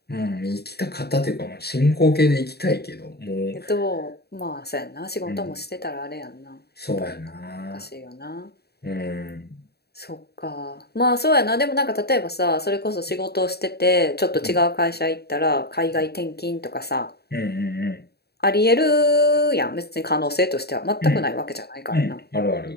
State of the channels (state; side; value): late; right; 0.47 ms